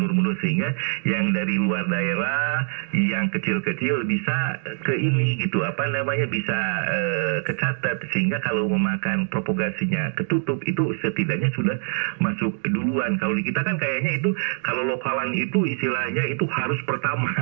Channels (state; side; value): silent; left; 61 dB below the other